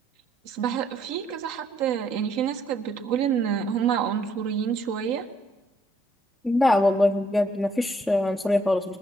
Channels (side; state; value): both; normal; correlation 0.70